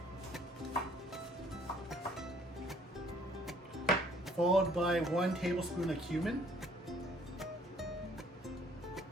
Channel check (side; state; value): both; normal; correlation 0.59